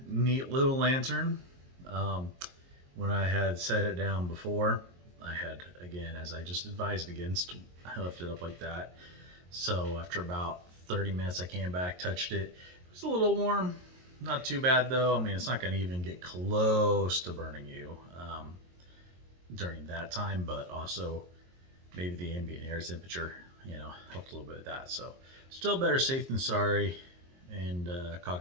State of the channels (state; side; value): late; left; 22 ms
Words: neat little lantern. When I had set it down before, I had, again, as I just advised against, I left it up like that. So after about 30 minutes I came back, touched it. It was a little warm, not too bad though. I mean, it's not going to even get close to burning you during that time, but also maybe the ambient air temperature helped a little bit with that. So still better safe than sorry, and